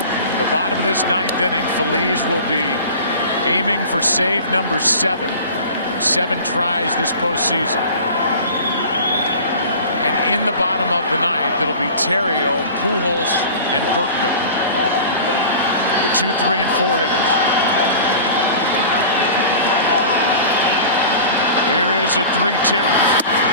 The bottom of this 9th inning, Feliz will be aiming for save number 7 in 7 tries this postseason. And in the bottom of the 9th, it'll be Terrio, Pujols, and Berkman, the 2, 3, and 4 hitters. Here is a 3-2,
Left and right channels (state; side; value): inverted; both; correlation -0.38